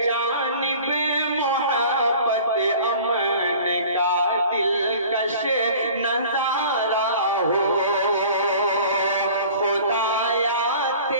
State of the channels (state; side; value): inverted; both; correlation -0.45